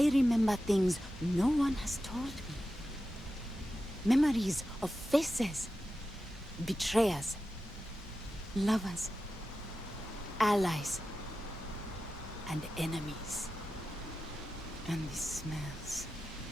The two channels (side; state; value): both; normal; correlation 0.92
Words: remember things no one has told me. Memories of faces, betrayers, lovers, allies, and enemies. And the smells.